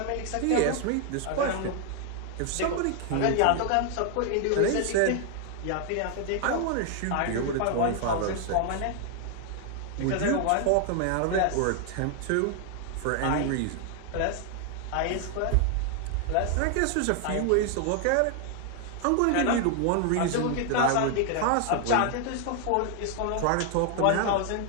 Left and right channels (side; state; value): both; different; correlation 0.00